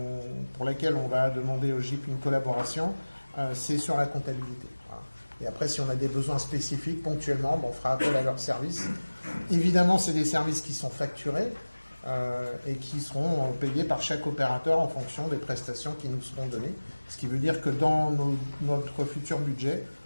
pour laquelle on va demander au GIP une collaboration, c'est sur la comptabilité. Voilà. Et après, si on a des besoins spécifiques ponctuellement, on fera appel à leurs services. Évidemment, c'est des services qui sont facturés et qui seront payés par chaque opérateur en fonction des prestations qui nous seront données. Ce qui veut dire que dans notre futur budget,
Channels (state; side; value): inverted; both; correlation -1.00